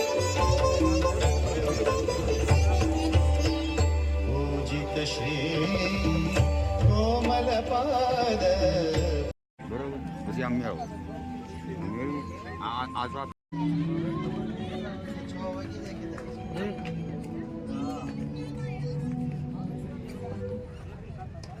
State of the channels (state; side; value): identical; both; correlation 1.00